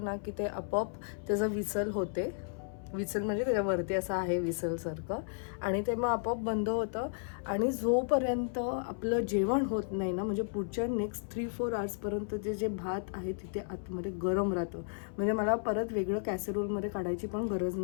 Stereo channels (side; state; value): right; silent; 55 dB below the other